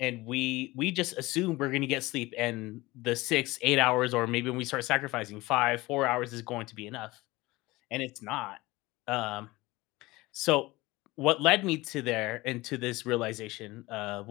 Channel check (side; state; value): right; quieter; 20.5 dB